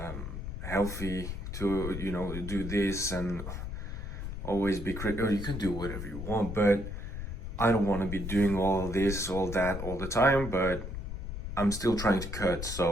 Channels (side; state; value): left; noise; rumble, 6 dB below the sound